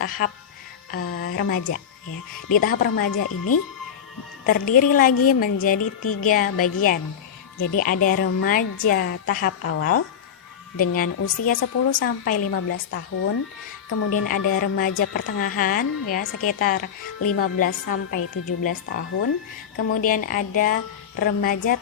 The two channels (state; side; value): quieter; right; 8.1 dB